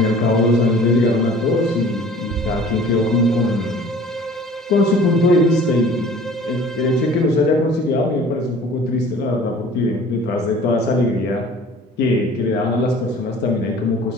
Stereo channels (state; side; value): normal; both; correlation 0.47